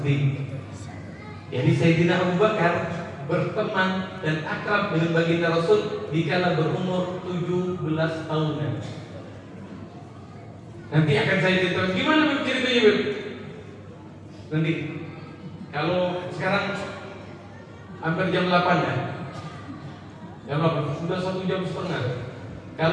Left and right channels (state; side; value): identical; both; correlation 1.00